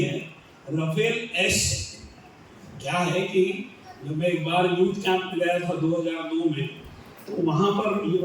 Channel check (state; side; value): identical; both; correlation 1.00